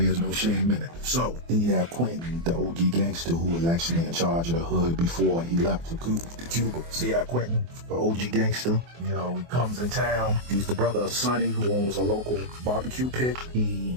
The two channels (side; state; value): left; late; 24 ms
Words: no shame in it. So then you have Quentin, the OG gangster, who was actually in charge of the hood before he left for Cuba. See how Quentin, the OG gangster, he comes in town. He's the brother of Sonny, who owns a local barbecue pit.